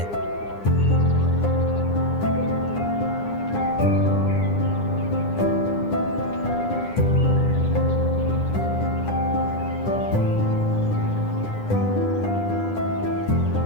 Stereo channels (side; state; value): right; late; 9.8 ms